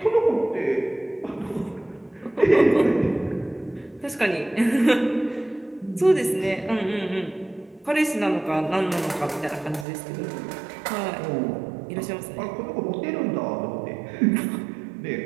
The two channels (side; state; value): left; drops out; at 9.9 s